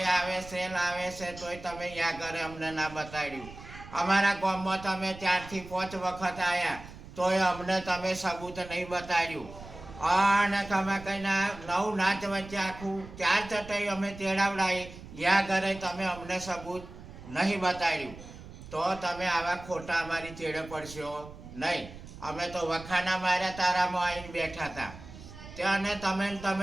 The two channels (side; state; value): right; noise; rumble, 15 dB below the sound